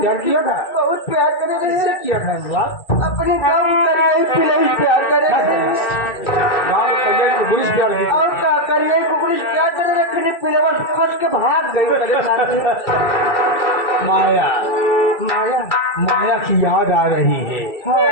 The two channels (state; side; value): late; right; 2.3 ms